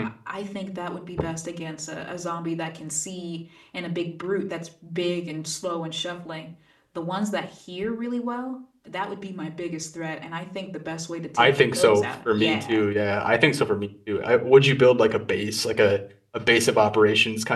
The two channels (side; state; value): both; identical; correlation 1.00